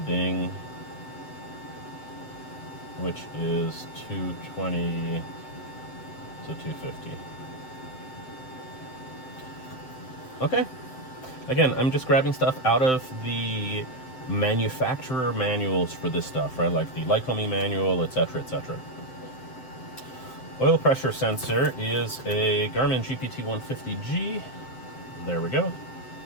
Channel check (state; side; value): late; right; 7.8 ms